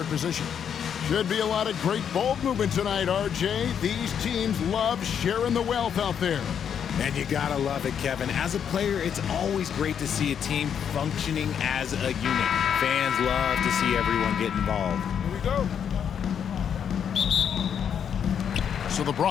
position. Should be a lot of great ball movement tonight, RJ. These teams love sharing the wealth out there. And you gotta love it, Kevin. As a player, it's always great to see a team functioning as a unit. Fans love to see everyone get involved. Here we go. So the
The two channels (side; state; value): right; quieter; 8.1 dB